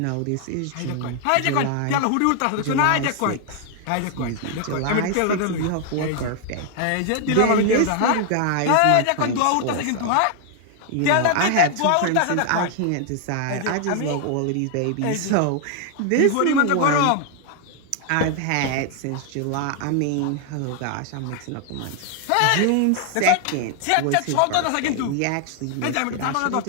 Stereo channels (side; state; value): both; different; correlation 0.00